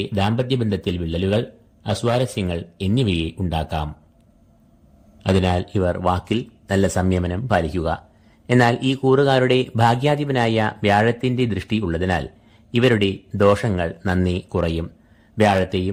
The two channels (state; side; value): identical; both; correlation 1.00